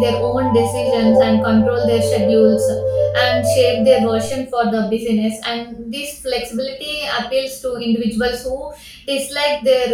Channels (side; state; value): both; identical; correlation 1.00